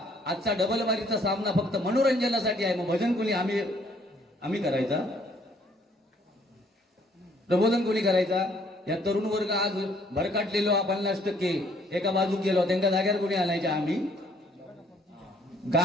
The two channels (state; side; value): normal; both; correlation 0.63